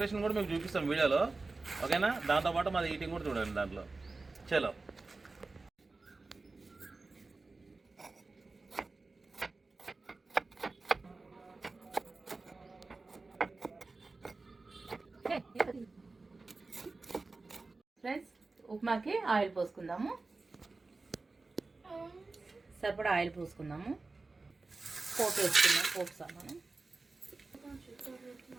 కూడా మీకు చూపిస్తాం వీడియోలో. ఓకేనా? దాంతోపాటు మాది ఈటింగ్ కూడా చూడండి దాంట్లో. చలో. ఫ్రెండ్స్, ఉప్మాకి ఆయిల్ పోసుకుందాము. సరిపడా ఆయిల్ పోసుకుందాము. పోపు వేసుకుందాం. పోపు సామాను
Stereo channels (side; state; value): left; quieter; 3.6 dB